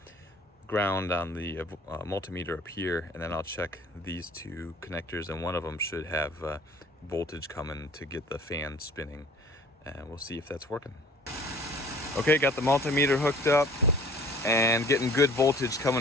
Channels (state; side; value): normal; both; correlation 0.50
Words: ground on the multimeter up here, and then I'll check these two connectors, and one of them should have voltage coming to get the fan spinning, and we'll see if that's working. Okay, got the multimeter hooked up and getting good voltage